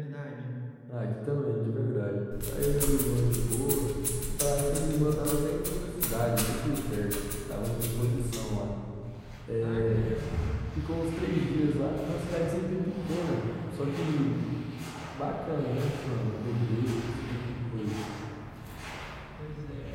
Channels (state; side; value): identical; both; correlation 1.00